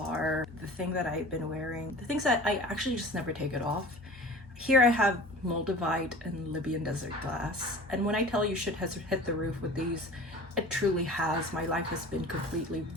the thing that I've been wearing, the things that I actually just never take it off. Here I have Moldavite and Libyan desert glass. And when I tell you shit has hit the roof with these, it truly has. My life has been completely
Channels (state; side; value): normal; both; correlation 0.41